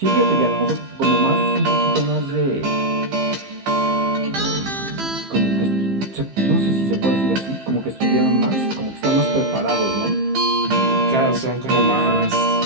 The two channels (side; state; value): left; late; 15 ms